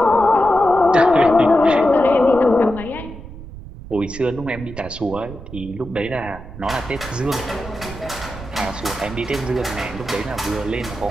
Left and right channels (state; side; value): noise; right; rumble, 14 dB below the sound